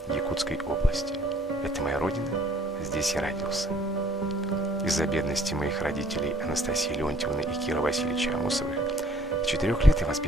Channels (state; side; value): normal; both; correlation 0.58